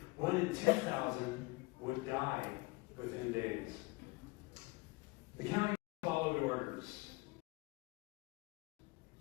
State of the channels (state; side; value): quieter; right; 24.7 dB